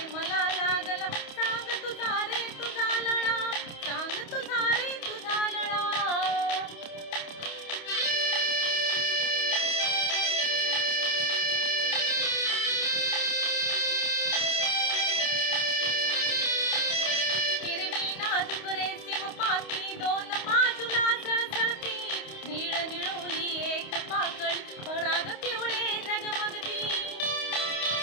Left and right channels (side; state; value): right; late; 28 ms